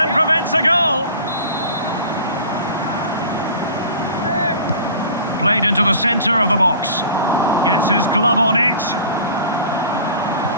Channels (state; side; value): inverted; both; correlation -0.42